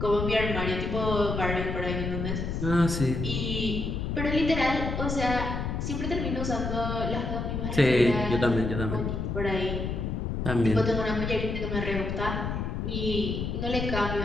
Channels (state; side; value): noise; left; rumble, 2 dB below the sound